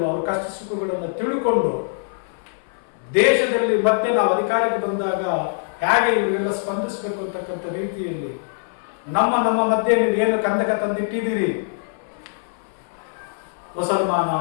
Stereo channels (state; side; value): silent; right; 58 dB below the other